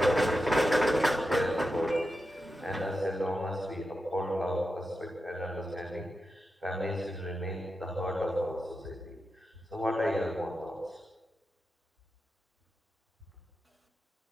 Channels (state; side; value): normal; both; correlation 0.89